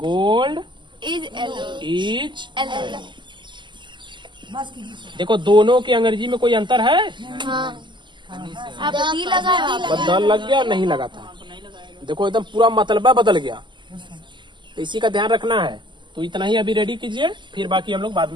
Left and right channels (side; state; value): left; late; 0.22 ms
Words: इज। देखो दोनों की अंग्रेजी में कोई अंतर है? आप दी लगा बस द लग गया, नहीं लगा था। देखो एकदम पूरा मतलबा बदल गया। तो इसी का ध्यान रखना है। तो इतना ही अभी रेडी कीजिए, फिर बाकी हम लोग बाद